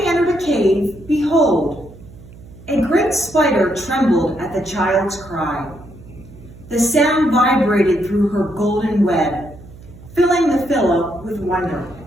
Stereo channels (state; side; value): noise; right; hum, 20 dB below the sound